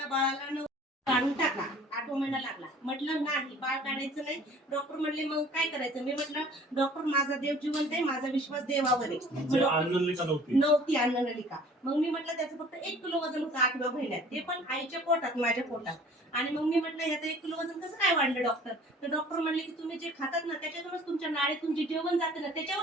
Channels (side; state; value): both; normal; correlation 0.50